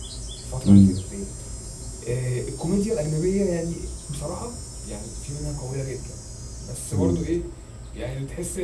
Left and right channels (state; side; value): identical; both; correlation 1.00